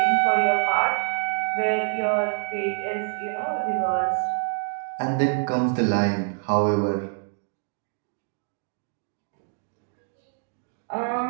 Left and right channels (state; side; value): silent; left; digital silence